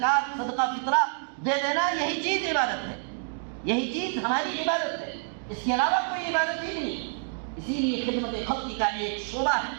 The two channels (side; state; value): left; silent; digital silence